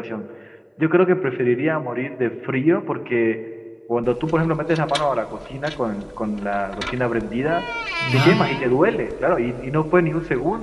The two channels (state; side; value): identical; both; correlation 1.00